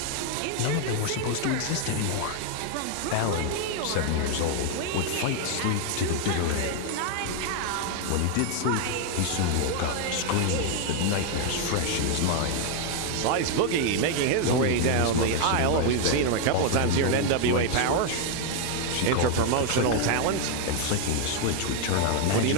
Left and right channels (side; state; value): both; different; correlation 0.01